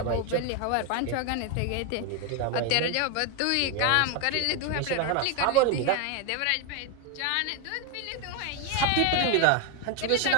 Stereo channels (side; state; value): both; different; correlation 0.01